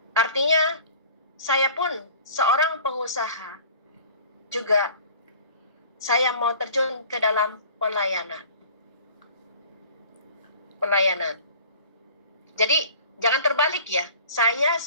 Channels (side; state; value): both; inverted; correlation -0.47